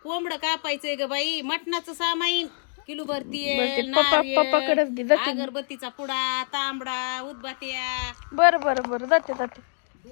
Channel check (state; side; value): silent; right; 58 dB below the other